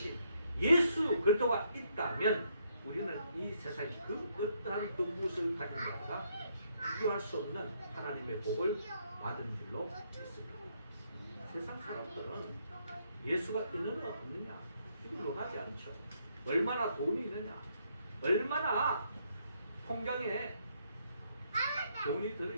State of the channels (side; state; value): both; inverted; correlation -0.73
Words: 예수 그리스도가 있다면 우리는 이 세상에 그 어떠한 그 무엇을 가진 자가 비교할 수 없는 하나님의 복을 받은 줄로 믿습니다. 세상 사람들은 예수가 있느냐 없느냐 이걸 논하지 않죠. 얼마나 돈이 있느냐 얼마나 통장에 돈이